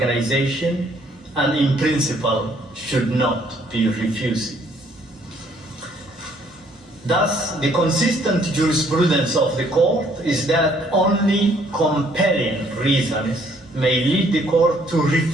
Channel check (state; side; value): normal; both; correlation 0.64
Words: and in principle should not be refused. Thus, the consistent jurisprudence of the court is that only compelling reasons may lead the court to